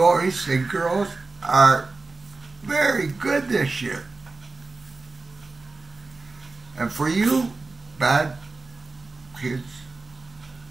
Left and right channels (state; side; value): quieter; left; 3.7 dB